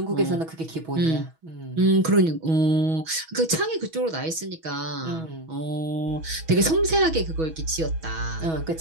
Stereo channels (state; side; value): late; left; 6.2 ms